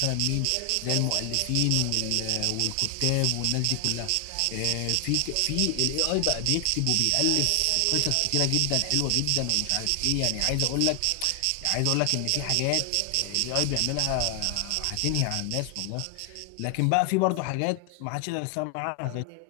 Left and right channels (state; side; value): different; both; correlation 0.00